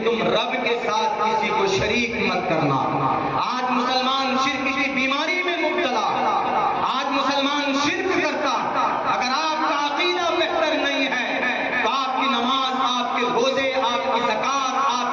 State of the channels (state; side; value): identical; both; correlation 1.00